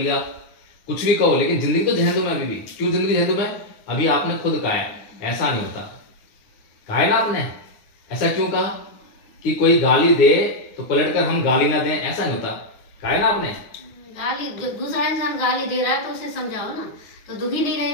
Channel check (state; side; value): late; right; 9.7 ms